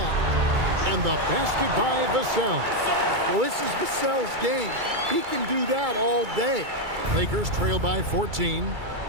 And the basket by Vassell. Well, this is Vassell's game. He can do that all day. Lakers trail by 14.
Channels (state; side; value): late; left; 2.3 ms